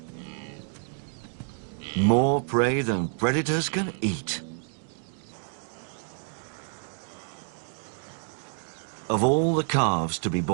More prey than predators can eat. Of all the calves to be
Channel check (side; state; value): left; silent; 59 dB below the other